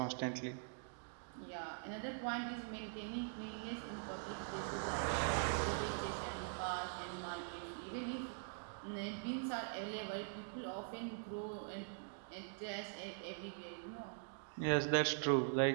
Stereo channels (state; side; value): silent; left; digital silence